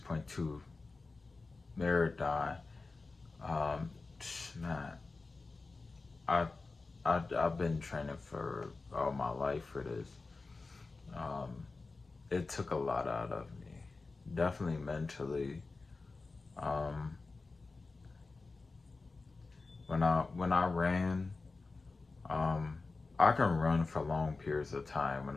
marathon, um, man, I, I've been training for all my life for this. Um, it took a lot out of me, definitely mentally. Um, when I ran, um, I can run for long periods of time.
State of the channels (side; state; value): right; quieter; 3.8 dB